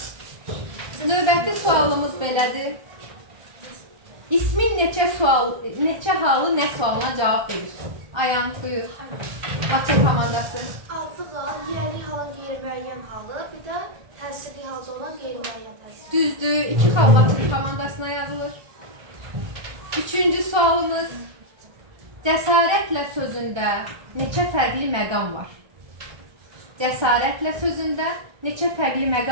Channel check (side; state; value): left; late; 1.3 ms